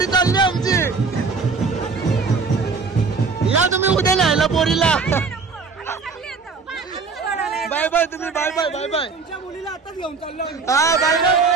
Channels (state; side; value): quieter; left; 4.7 dB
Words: चालली आमची. या तुम्ही उद्या न्यायला पोरीला. बाय बाय तुम्ही. Bye bye. Bye bye. तुमच्या मुलीला आताच घेऊन चाललो. हा बाय बाय.